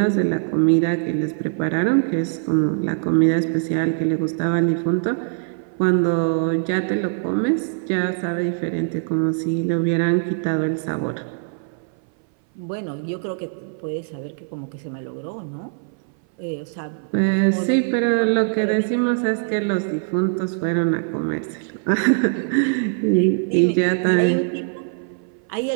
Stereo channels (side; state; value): left; silent; 59 dB below the other